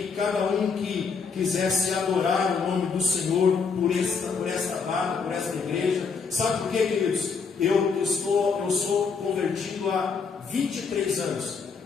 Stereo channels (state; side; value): quieter; right; 5.4 dB